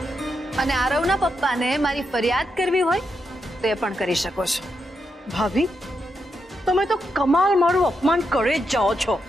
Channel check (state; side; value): normal; both; correlation 0.83